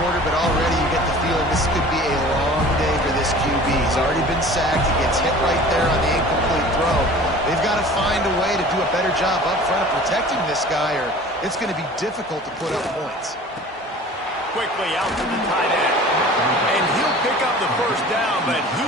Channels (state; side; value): normal; both; correlation 0.44